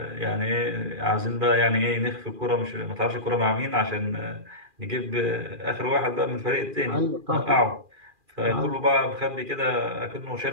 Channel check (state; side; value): late; left; 2.4 ms